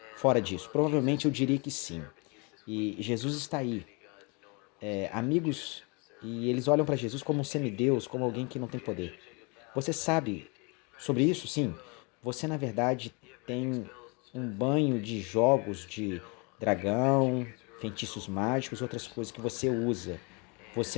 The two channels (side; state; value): right; quieter; 31.3 dB